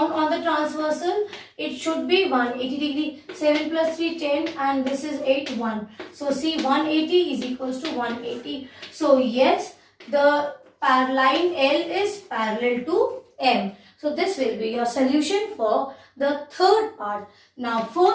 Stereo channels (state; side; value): identical; both; correlation 1.00